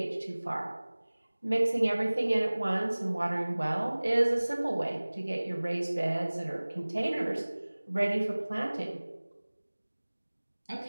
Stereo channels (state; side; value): inverted; both; correlation -1.00